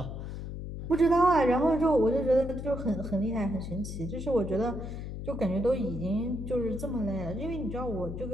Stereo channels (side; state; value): left; noise; hum, 7 dB below the sound